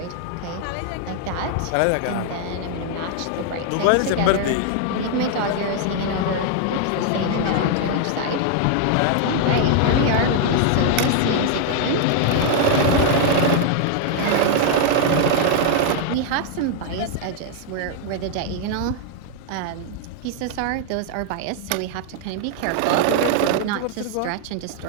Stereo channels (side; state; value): both; different; correlation 0.00